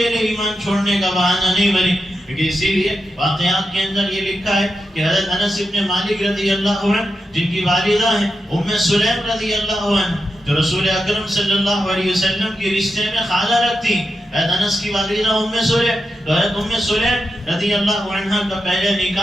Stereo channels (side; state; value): both; normal; correlation 0.88